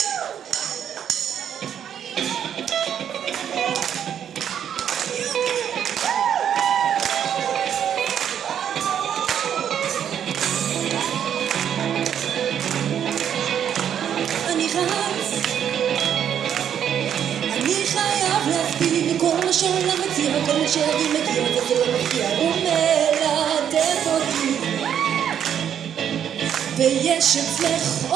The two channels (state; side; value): quieter; left; 9.1 dB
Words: אני רץ, אני חייב להספיק כל מה שהעולם מציע, כל מה שהילדים מגיע וזה לא מפתיע, הוא מלטף אותי ויש אצלך